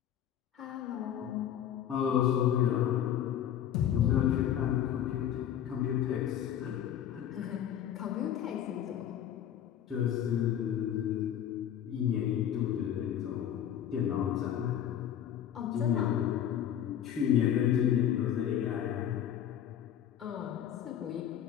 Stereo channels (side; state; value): right; quieter; 10.2 dB